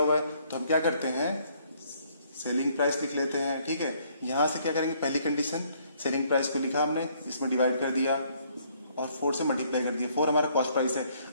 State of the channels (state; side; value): inverted; both; correlation -0.66